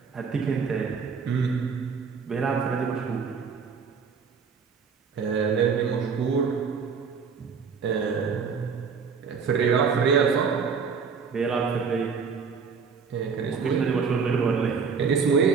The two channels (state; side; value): quieter; left; 5.8 dB